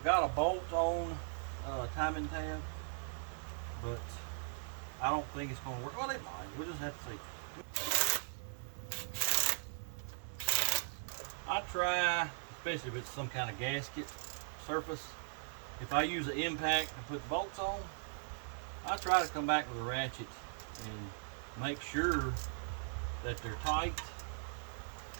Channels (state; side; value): silent; left; 52 dB below the other